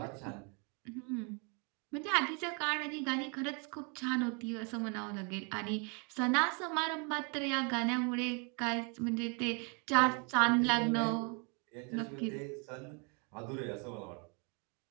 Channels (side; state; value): left; quieter; 34.7 dB